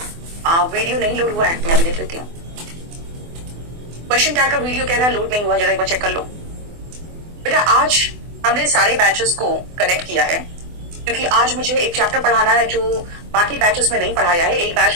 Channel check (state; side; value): late; left; 24 ms